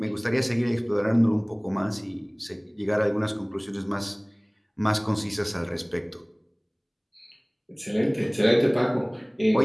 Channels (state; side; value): identical; both; correlation 1.00